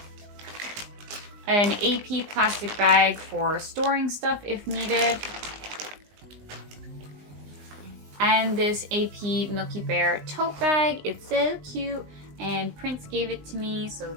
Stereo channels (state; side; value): late; left; 20 ms